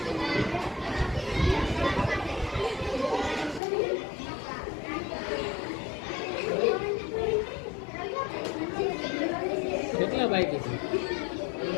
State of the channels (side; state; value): right; drops out; at 3.6 s